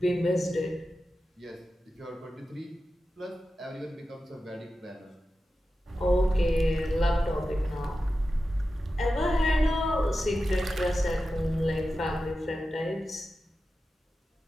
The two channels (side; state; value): both; normal; correlation 0.92